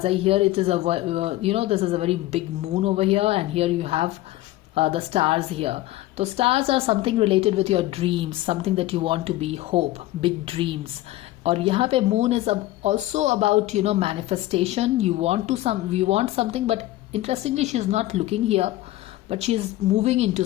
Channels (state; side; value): quieter; right; 16.4 dB